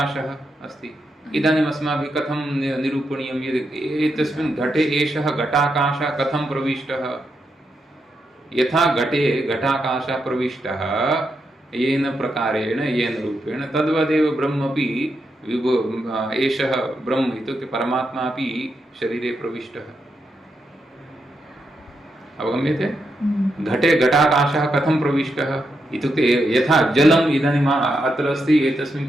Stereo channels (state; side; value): normal; both; correlation 0.83